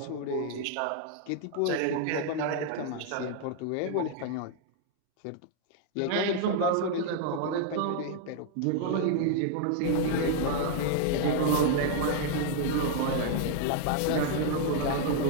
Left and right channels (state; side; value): different; both; correlation 0.00